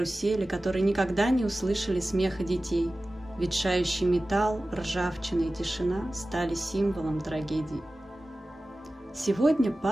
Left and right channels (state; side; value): normal; both; correlation 0.96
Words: которые никогда не услышали смеха детей. Ветшающий металл, ржавчина и тишина стали символом трагедии. Сегодня